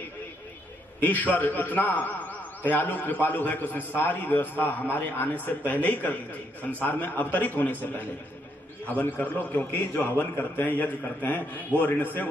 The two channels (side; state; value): both; normal; correlation 0.74